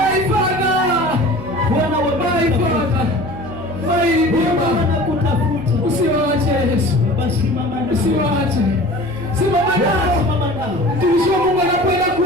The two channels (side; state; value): right; noise; hum, 15 dB below the sound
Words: Father, Bwana wa my Father, my Redeemer, wanakutafuta. Usiwaache Yesu, usiwaache, simama nao. Mtumishi wa Mungu anakwenda